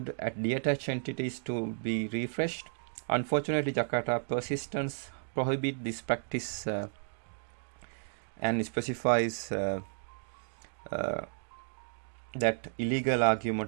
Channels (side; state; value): left; silent; digital silence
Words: at detached entities to be refreshed. Unfortunately, Jakarta persistence prohibit this practice and specifies that illegal